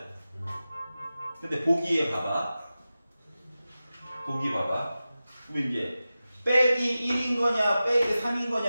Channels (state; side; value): inverted; both; correlation -0.94